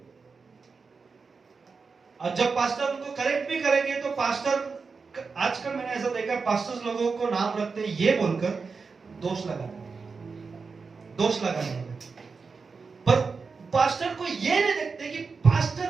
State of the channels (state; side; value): quieter; left; 4.8 dB